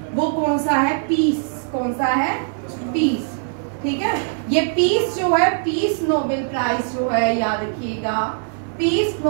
वो कौन सा है? पीस। कौन सा है? पीस, ठीक है। ये पीस जो है, पीस नोबेल प्राइज जो है याद रखिएगा पीस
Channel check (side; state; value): left; silent; 58 dB below the other